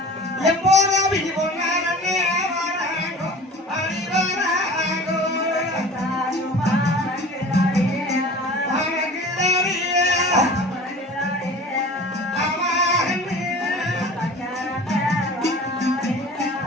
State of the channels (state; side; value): normal; both; correlation 0.41